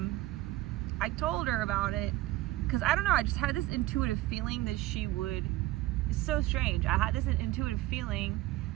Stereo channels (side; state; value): left; quieter; 17.0 dB